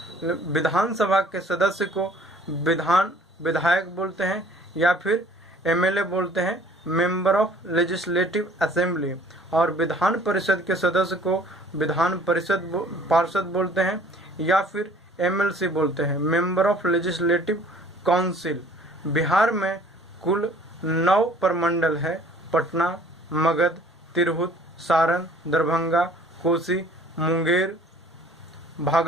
विधानसभा के सदस्य को विधायक बोलते हैं या फिर एमएलए बोलते हैं, मेंबर ऑफ लेजिस्लेटिव असेंबली। और विधान परिषद के सदस्य को विधान परिषद पार्षद बोलते हैं या फिर एमएलसी बोलते हैं, member of legislative council. Bihar में कुल 9 प्रमंडल है, पटना, मगध, तिरहुत, सारण, दरभंगा, कोसी, मुंगेर,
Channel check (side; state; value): both; normal; correlation 0.53